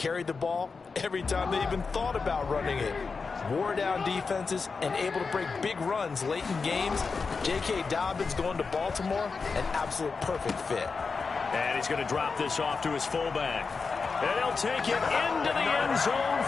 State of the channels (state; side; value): quieter; right; 4.8 dB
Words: the ball every time they even thought about running it. Wore down defenses and able to break big runs late in games. J.K. Dobbins going to Baltimore, an absolute perfect fit. And he's going to drop this off to his fullback. And he'll take it into the end zone